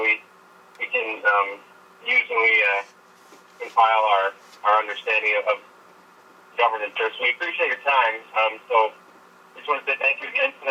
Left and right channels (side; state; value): both; identical; correlation 1.00